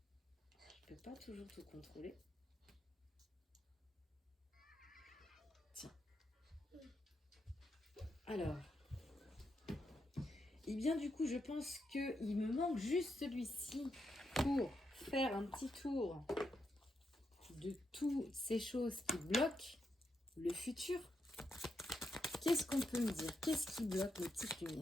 je ne peux pas toujours tout contrôler. Tiens. Alors, et bien du coup, je pense qu'il me manque juste celui-ci pour faire un petit tour de toutes ces choses qui bloquent le futur. Qu'est-ce qu'on peut me dire? Qu'est-ce qui bloque les petites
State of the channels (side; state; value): both; normal; correlation 0.83